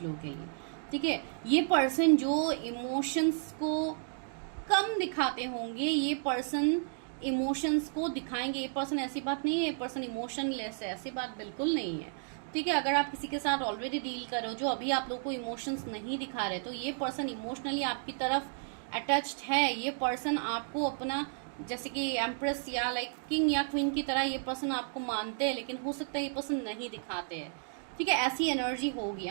लोगों के लिए। ठीक है, ये पर्सन जो इमोशंस को कम दिखाते होंगे, ये पर्सन इमोशंस को दिखाएंगे। ये पर्सन, ऐसी बात नहीं है ये पर्सन इमोशनलेस है, ऐसी बात बिल्कुल नहीं है। ठीक है, अगर आप किसी के साथ ऑलरेडी डील कर रहे हो जो अभी आप लोग को इमोशंस नहीं दिखा रहे, तो ये पर्सन इमोशनली आपकी तरफ अटैच्ड है। ये पर्सन आपको अपना, जैसे कि एम्प्रेस या लाइक किंग या क्वीन की तरह ये पर्सन आपको मानते हैं, लेकिन हो सकता है ये पर्सन नहीं दिखाते हैं। ठीक है, ऐसी एनर्जी होगी।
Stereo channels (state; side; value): silent; left; digital silence